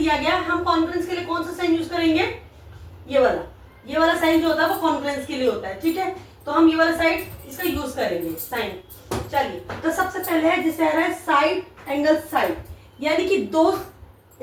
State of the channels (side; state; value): both; identical; correlation 1.00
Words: गया। हम कॉन्ग्रुएंस के लिए कौन सा साइन यूज करेंगे, ये वाला साइन जो होता है वो कॉन्ग्रुएंस के लिए होता है, ठीक है। तो हम ये वाला साइड इसका यूज करेंगे साइन। चलिए तो सबसे पहले है जिसे आ रहा है साइड एंगल साइड, यानी कि